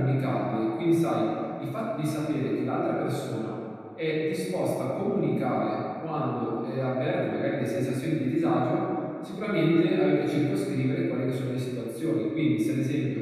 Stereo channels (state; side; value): identical; both; correlation 1.00